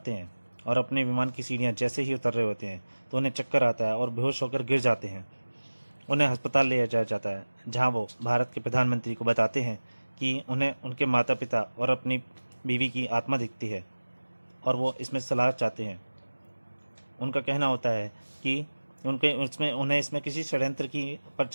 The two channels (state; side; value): inverted; both; correlation -1.00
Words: हैं और अपने विमान की सीढ़ियां जैसे ही उतर रहे होते हैं तो उन्हें चक्कर आता है और बेहोश होकर गिर जाते हैं। उन्हें अस्पताल ले जाया जाता है, जहां वो भारत के प्रधानमंत्री को बताते हैं कि उन्हें उनके माता पिता और अपनी बीवी की आत्मा दिखती है और वो इसमें सलाह चाहते हैं। उनका कहना होता है कि उन्हें इसमें किसी षड्यंत्र की